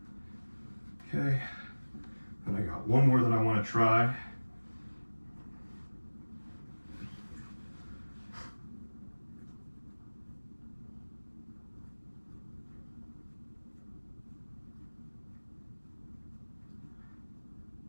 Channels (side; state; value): both; inverted; correlation -1.00